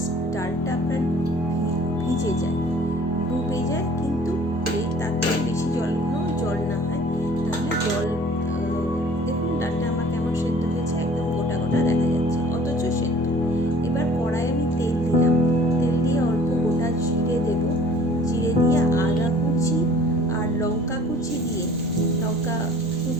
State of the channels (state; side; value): noise; right; hum, 29 dB below the sound